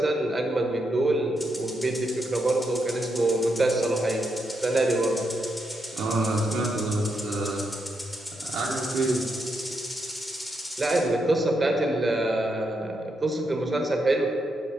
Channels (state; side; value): normal; both; correlation 0.81